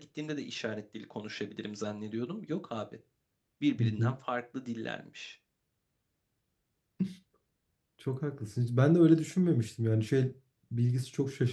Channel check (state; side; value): identical; both; correlation 1.00